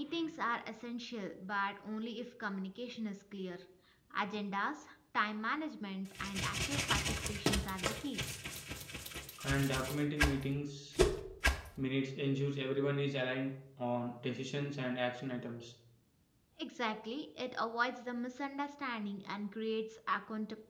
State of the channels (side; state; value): both; identical; correlation 1.00